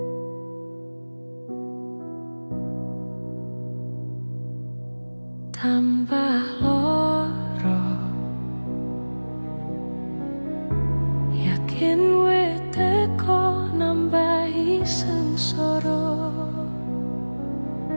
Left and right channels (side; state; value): both; inverted; correlation -1.00